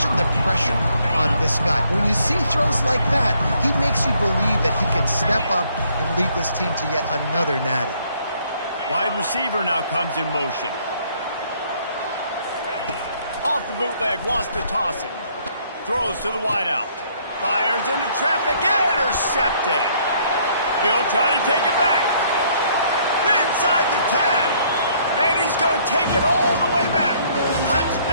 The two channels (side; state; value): both; inverted; correlation -0.65